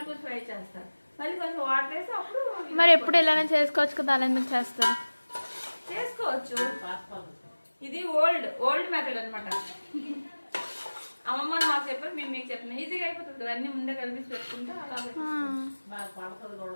కొంచెం ఫ్రై చేస్తారు. మళ్ళీ కొంచెం వాటర్ వేసి అప్పుడు. మరి ఎప్పుడు ఇలానే చేసుకోవచ్చు కదా, అలా ఎందుకు చేస్తారు? చేసుకోవచ్చు, ఇది ఓల్డ్ మెథడ్ అనమాట. అమ్మమ్మ మాకు చెప్పారు, మేము మీకు చెప్పిన ఈజీగా అయిపోతుంది కదా. అన్ని ముందే కలిపి పెట్టుకుంటే అలా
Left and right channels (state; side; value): inverted; both; correlation -1.00